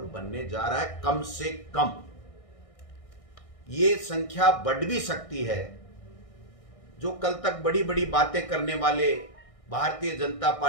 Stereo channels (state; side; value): late; right; 1.6 ms